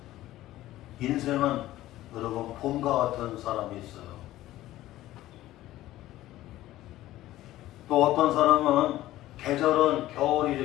인생은 여러분 봄과 같은 사람이 있어요. 또 어떤 사람은 계절은 겨울이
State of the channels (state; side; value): quieter; right; 15.2 dB